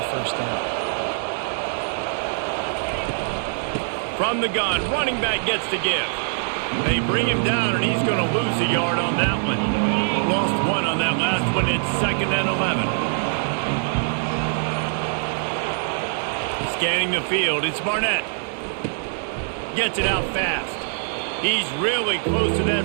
first down. From the gun, running back gets to give. They bring him down, and he's going to lose a yard on that one. Lost 1 on that last one. It's 2nd and 11. Scanning the field, it's Barnett. Gets it out fast. He's really close to that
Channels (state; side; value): silent; left; digital silence